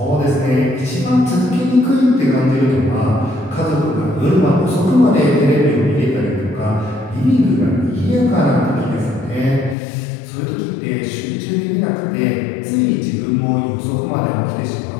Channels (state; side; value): drops out; right; at 9.8 s